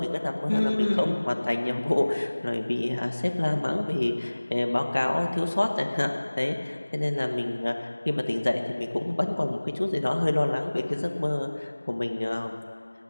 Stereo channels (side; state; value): both; inverted; correlation -1.00